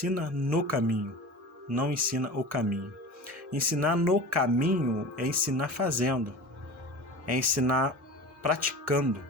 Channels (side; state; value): both; normal; correlation 0.34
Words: no caminho, não ensina o caminho. Ensinar no caminho é ensinar fazendo, é ensinar praticando,